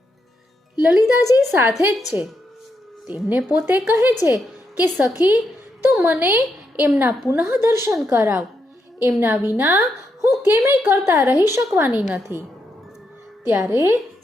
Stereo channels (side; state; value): both; normal; correlation 0.82